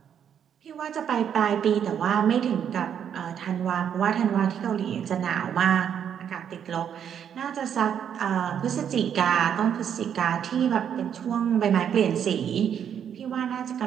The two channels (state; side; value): quieter; left; 8.6 dB